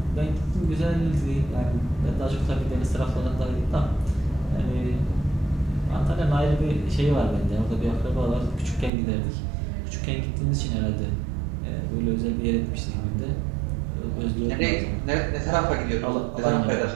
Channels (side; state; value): left; drops out; at 8.9 s